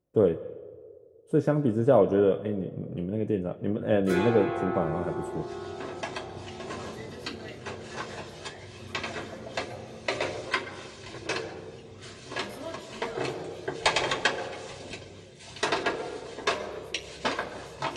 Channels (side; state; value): both; identical; correlation 1.00